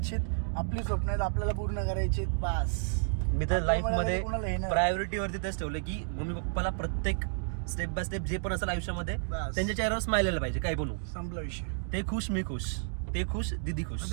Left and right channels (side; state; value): left; silent; digital silence